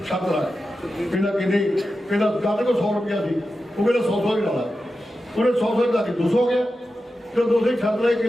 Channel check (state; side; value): normal; both; correlation 0.91